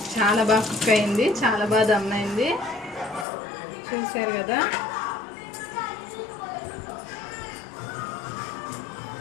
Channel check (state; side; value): drops out; right; at 3.2 s